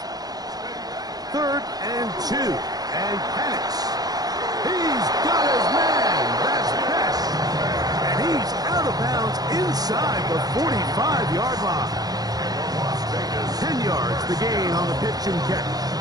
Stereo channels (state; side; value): late; left; 0.19 ms